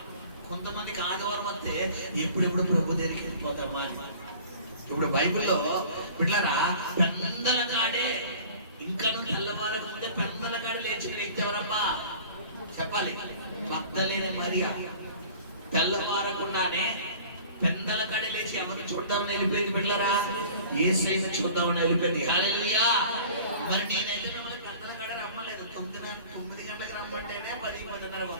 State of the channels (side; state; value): both; inverted; correlation -0.45